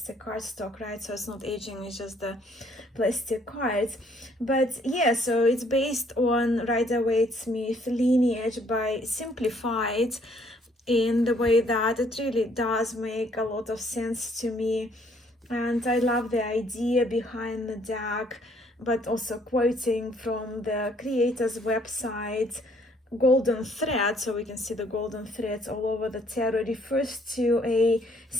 cardstock, right? So it's not aging, it's just the plastic cards. But yeah, so it's based on Rider-Waite-Smith lineage by Simplified, in the way that it really does make a lot of sense to me. And I love the idea behind the deck, but also quoting from the creator's website, golden thread, so we can see the golden threads all over the tarot, refers to a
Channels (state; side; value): normal; both; correlation 0.64